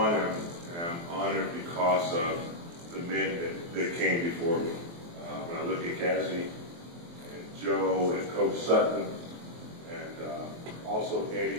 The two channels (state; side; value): late; left; 23 ms